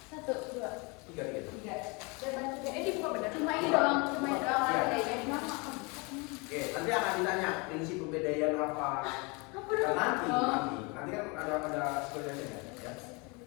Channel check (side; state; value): right; quieter; 29.2 dB